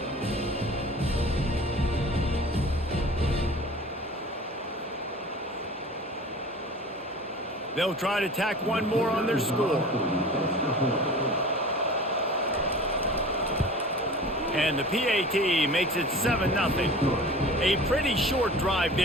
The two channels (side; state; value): both; normal; correlation 0.41